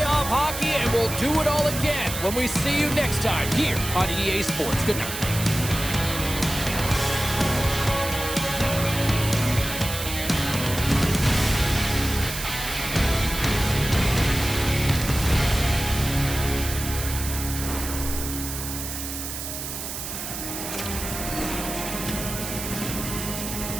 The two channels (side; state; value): right; noise; hiss, 6 dB below the sound